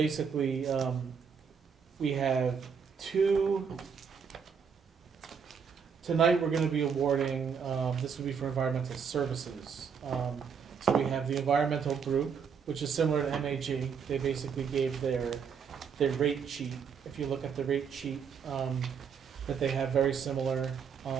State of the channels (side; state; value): left; quieter; 6.6 dB